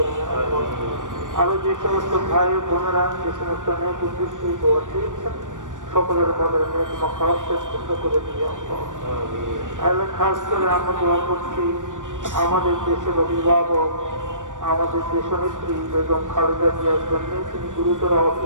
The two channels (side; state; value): left; late; 0.87 ms